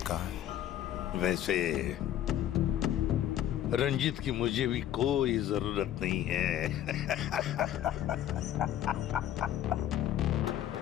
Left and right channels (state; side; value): quieter; right; 11.8 dB